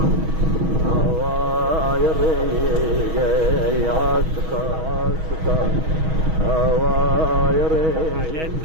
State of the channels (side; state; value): left; late; 6.3 ms